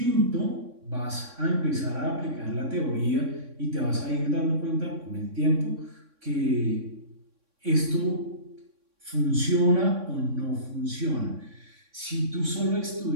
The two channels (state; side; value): late; left; 3.6 ms